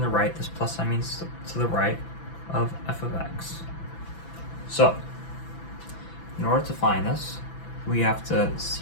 right, this plus sign means to the right, of f of x. So, in order to find this, we have to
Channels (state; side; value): late; right; 6.0 ms